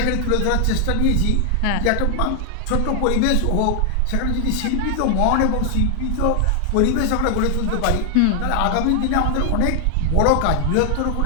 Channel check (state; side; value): different; both; correlation 0.00